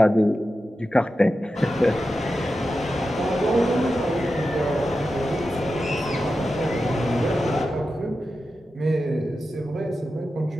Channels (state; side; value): normal; both; correlation 0.91